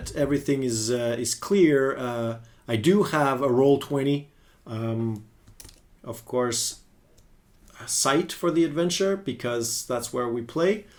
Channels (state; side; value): identical; both; correlation 1.00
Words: everything is clear, I do have a Roll20, of course, site for the adventure, because that's where we play.